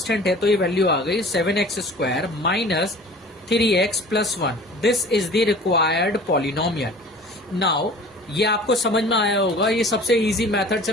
है, तो ये वैल्यू आ गई 7x square minus 3x plus 1। This is the required polynomial. Now ये आपको समझ में आया होगा, ये सबसे इजी मेथड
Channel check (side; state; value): both; normal; correlation 0.44